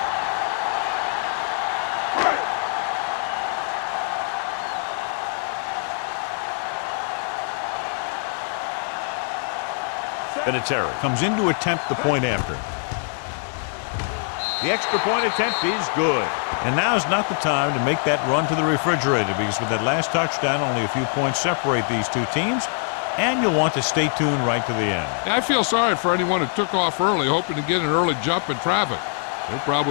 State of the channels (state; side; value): silent; right; 59 dB below the other